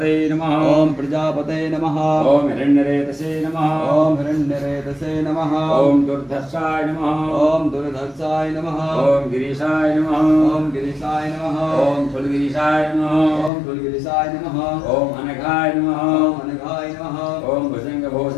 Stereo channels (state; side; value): drops out; right; at 13.5 s